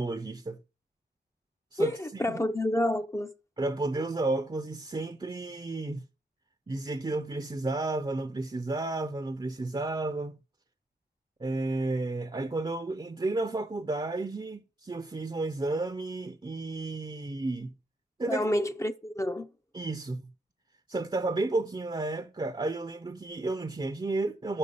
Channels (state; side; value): normal; both; correlation 0.77